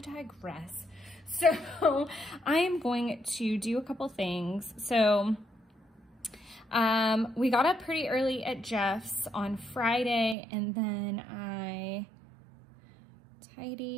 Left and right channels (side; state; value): left; drops out; at 10.4 s